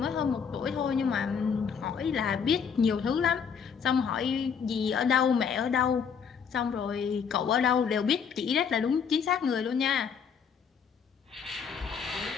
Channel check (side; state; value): right; quieter; 6.7 dB